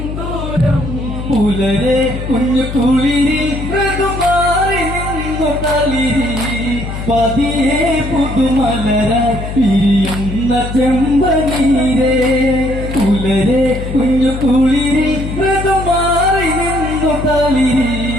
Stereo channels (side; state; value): left; noise; hum, 7 dB below the sound